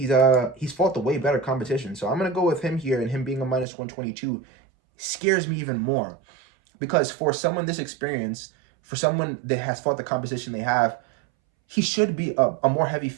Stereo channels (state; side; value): drops out; left; at 3.7 s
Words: fought the way better competition. So I'm going to go with him here, and him being a minus 122 scares me even more. Because for someone this experienced, for someone that has fought the competition they have, he should be a more heavy